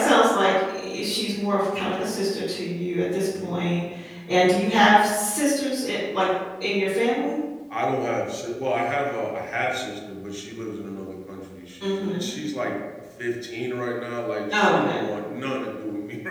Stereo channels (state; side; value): identical; both; correlation 1.00